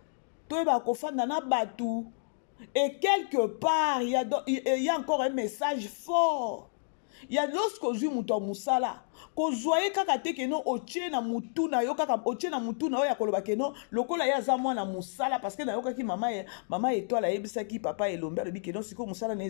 toyeba kofanda na batu et quelque part il y a encore un message fort. Il y a lorsque ozui muto musala ko zoye kaka te keno oche na mutu na yo kaka oche na mutu na yo ya koloba keno lokola ya za mwana musala parce que na yo kaki mama étoile yebisa ki papa elombe lobi keno siko musala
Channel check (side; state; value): right; silent; digital silence